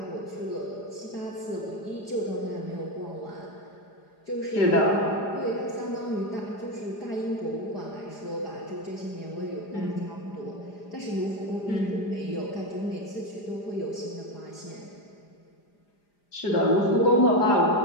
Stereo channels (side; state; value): right; late; 4.9 ms